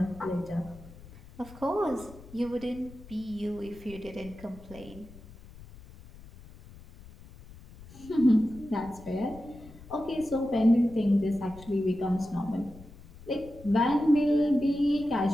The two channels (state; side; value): noise; left; rumble, 19 dB below the sound